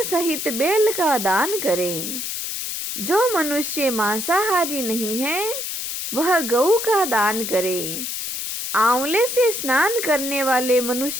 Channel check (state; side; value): noise; left; hiss, 4 dB below the sound